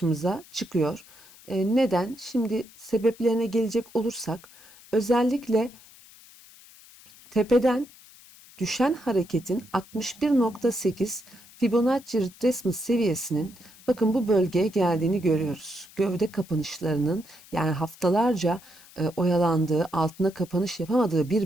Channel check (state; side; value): noise; left; hiss, 23 dB below the sound